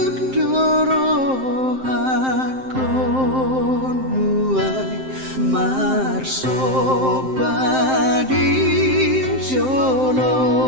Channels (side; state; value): left; late; 7.7 ms